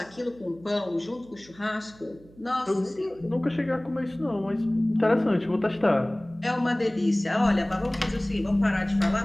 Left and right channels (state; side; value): noise; right; hum, 25 dB below the sound